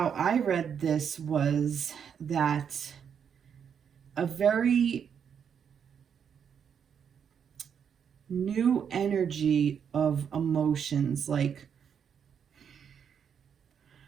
I read this was that a very new energy of emotions, like,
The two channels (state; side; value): quieter; left; 7.6 dB